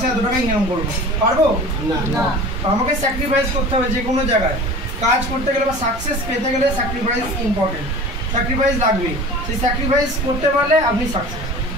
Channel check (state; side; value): normal; both; correlation 0.39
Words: এত টাকা ইনকাম করবো, পারবো না। আমাকে স্যাক্রিফাইস করতে হবে যে কোনো জায়গায় কাজ করতে গেলে বা সাকসেস পেতে গেলে স্যাক্রিফাইস ইম্পর্টেন্ট, স্যাক্রিফাইস লাগবে। সেই স্যাক্রিফাইস করতে পারলে আপনি সাকসেস।